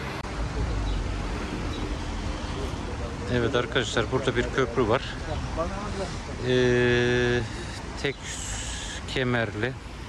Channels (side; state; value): both; identical; correlation 1.00